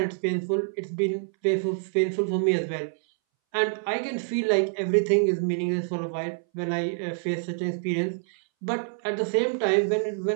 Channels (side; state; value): left; silent; 60 dB below the other